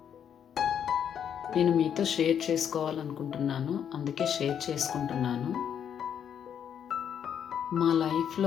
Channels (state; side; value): quieter; right; 8.6 dB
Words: నేను మీతో షేర్ చేసుకోవాలనుకుంటున్నాను, అందుకే షేర్ చేసుకుంటున్నాను. మా